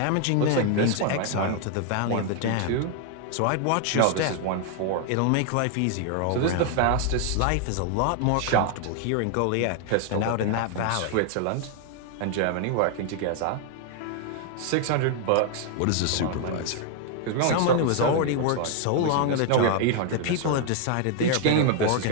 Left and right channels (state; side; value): different; both; correlation 0.00